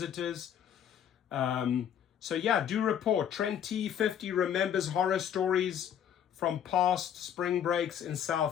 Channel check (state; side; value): quieter; right; 9.3 dB